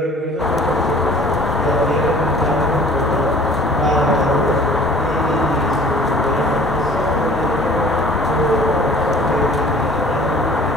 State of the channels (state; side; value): normal; both; correlation 0.50